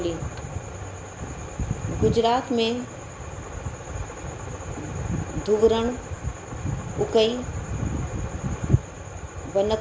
गुजरात में धुवरण, उकई,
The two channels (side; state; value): both; identical; correlation 1.00